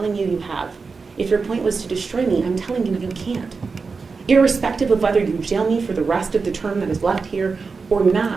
you, you have. If your point was to destroy me, I'm telling you, you can't. Irrespective of whether you jail me for the rest of the term that is left here or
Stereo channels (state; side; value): quieter; left; 4.7 dB